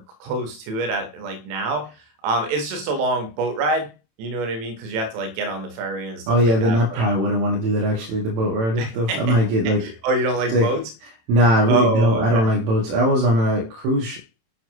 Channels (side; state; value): left; late; 27 ms